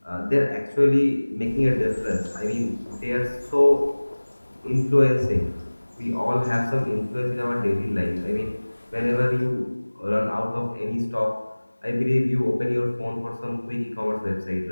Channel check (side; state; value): both; inverted; correlation -1.00